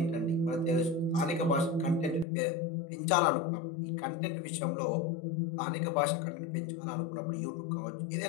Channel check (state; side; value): drops out; right; at 2.2 s